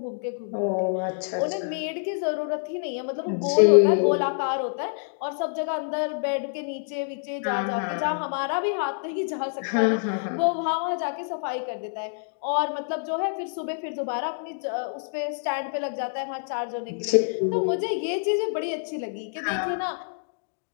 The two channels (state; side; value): silent; right; digital silence